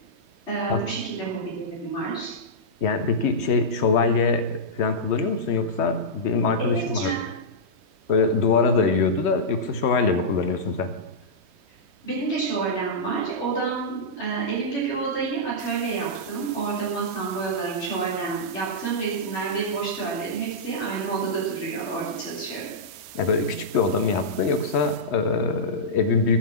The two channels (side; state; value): left; late; 3.1 ms